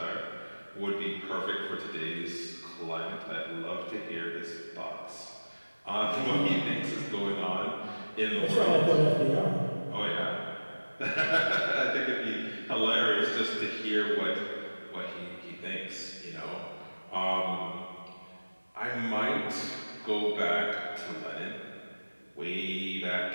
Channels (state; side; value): inverted; both; correlation -1.00